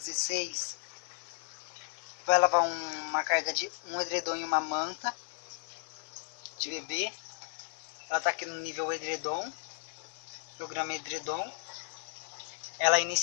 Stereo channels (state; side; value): silent; right; 55 dB below the other